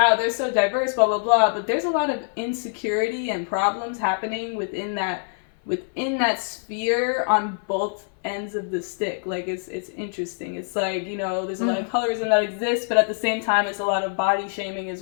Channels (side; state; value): right; silent; 56 dB below the other